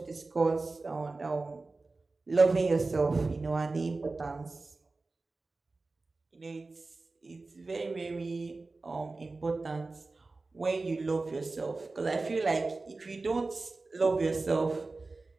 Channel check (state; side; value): quieter; left; 3.5 dB